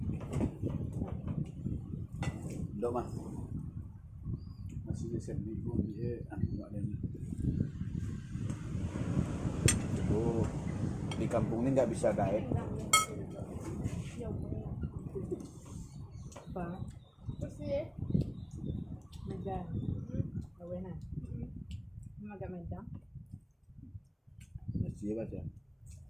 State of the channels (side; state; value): both; identical; correlation 1.00